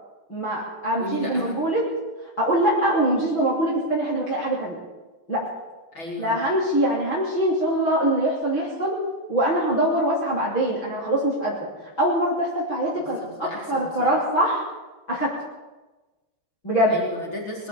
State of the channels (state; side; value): late; right; 6.1 ms